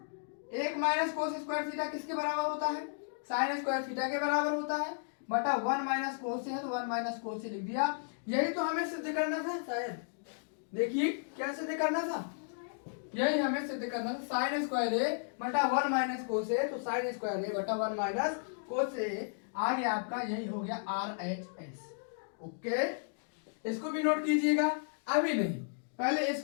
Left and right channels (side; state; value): right; silent; digital silence